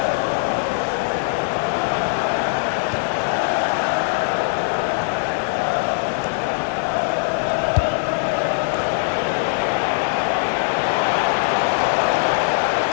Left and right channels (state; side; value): silent; right; digital silence